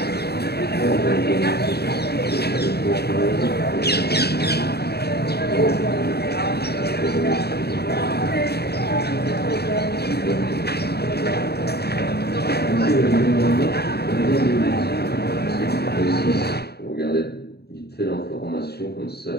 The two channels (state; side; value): late; right; 0.47 ms